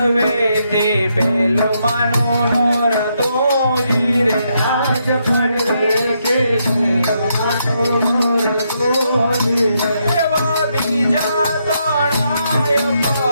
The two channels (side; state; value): both; inverted; correlation -0.78